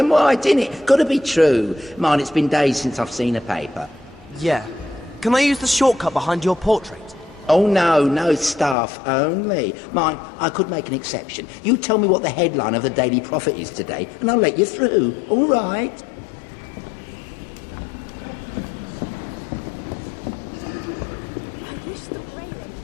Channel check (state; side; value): drops out; right; at 8.8 s